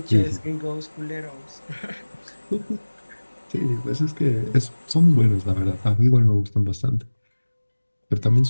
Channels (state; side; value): inverted; both; correlation -1.00